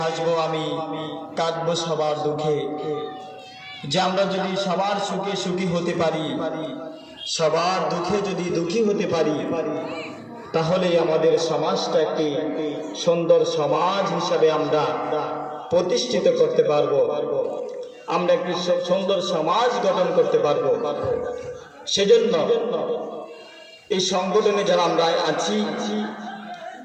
আমি, কাঁদবো সবার দুঃখে। যে আমরা যদি সবার সুখে সুখী হতে পারি, সবার দুঃখে যদি দুঃখী হতে পারি, তাহলে আমাদের সমাজটা একটি সুন্দর সমাজ হিসাবে আমরা প্রতিষ্ঠিত করতে পারবো, আমরা একটি সুন্দর সমাজ গঠন করতে পারবো। সেজন্য এই সংগঠনে যারা আমরা আছি,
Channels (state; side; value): identical; both; correlation 1.00